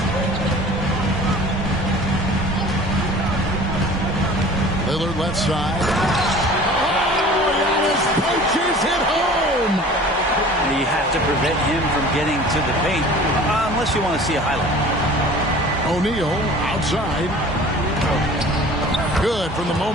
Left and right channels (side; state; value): both; normal; correlation 0.44